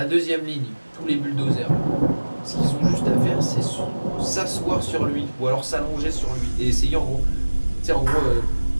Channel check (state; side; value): inverted; both; correlation -1.00